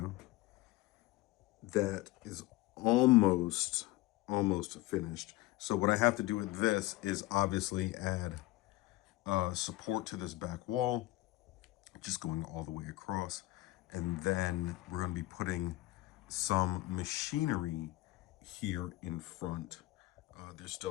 that is almost finished. So what I have to do with this is obviously add support to this back wall, just going all the way across. And then we're going to be putting some machinery here in front. There's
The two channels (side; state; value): right; quieter; 18.1 dB